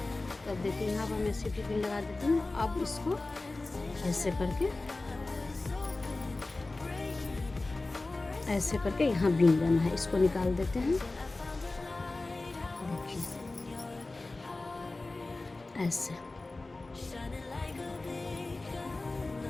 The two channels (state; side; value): quieter; right; 3.2 dB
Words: तो अब देखिए यहाँ पर मैं सिटी पिन लगा देती हूँ। अब इसको ऐसे करके यहाँ बीन देना है। इसको निकाल देते हैं। देखिए ऐसे।